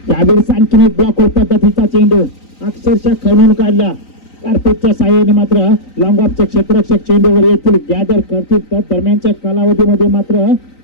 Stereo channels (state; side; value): late; right; 3.9 ms